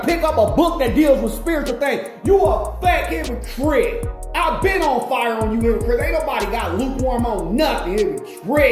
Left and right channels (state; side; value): identical; both; correlation 1.00